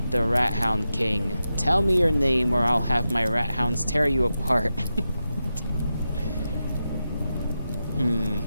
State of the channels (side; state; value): both; inverted; correlation -0.90